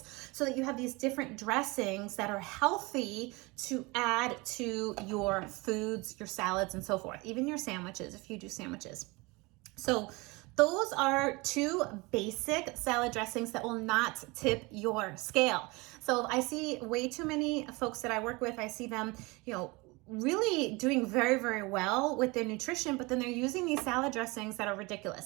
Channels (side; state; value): left; quieter; 25.0 dB